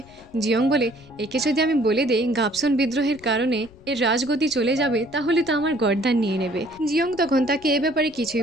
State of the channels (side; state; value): left; noise; rumble, 24 dB below the sound